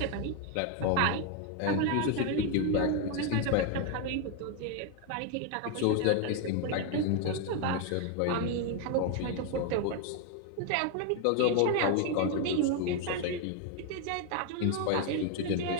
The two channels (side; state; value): both; different; correlation 0.01